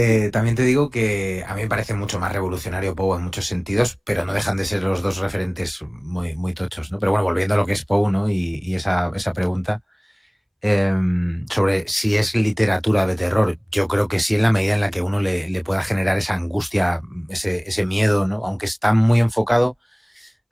también te digo que a mí me parece mucho más revolucionario Poe en muchos sentidos, pero no dejan de ser los dos referentes muy, muy tochos, ¿no? Pero bueno, volviendo a lo que es Poe, ¿no? Y esa pregunta sobre si es literatura de terror, yo creo que sí, en la medida en la que uno le pueda generar esa angustia, ese miedo, ¿no? Aunque está muy enfocado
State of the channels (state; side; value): identical; both; correlation 1.00